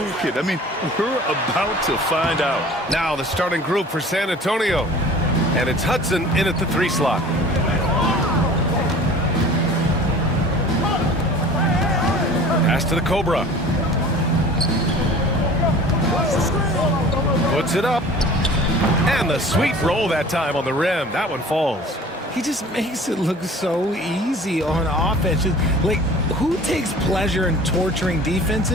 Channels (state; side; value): normal; both; correlation 0.44